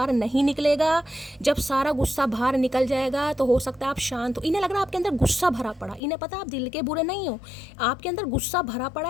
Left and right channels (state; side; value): drops out; right; at 6.0 s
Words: नहीं निकलेगा। जब सारा गुस्सा बाहर निकल जाएगा तो हो सकता है आप शांत हो। इन्हें लग रहा है आपके अंदर गुस्सा भरा पड़ा। इन्हें पता आप दिल के बुरे नहीं हो, आपके अंदर गुस्सा भरा पड़ा